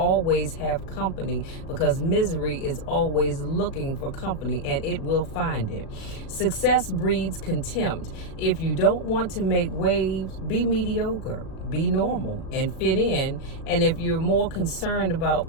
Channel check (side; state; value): right; late; 37 ms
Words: have company, because misery is always looking for company, and it will find it. Success breeds contempt. If you don't want to make waves, be mediocre, be normal, and fit in. And if you're more concerned